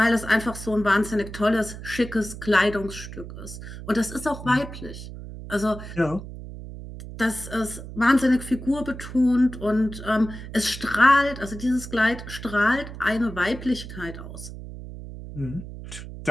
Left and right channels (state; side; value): noise; right; hum, 11 dB below the sound